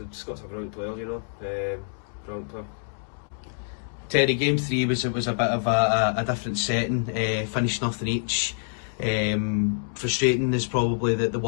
Scott's a brilliant player, you know. Brilliant player. Terry, game 3 was a bit of a different setting, finished nothing each. Frustrating is probably the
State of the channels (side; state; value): right; silent; digital silence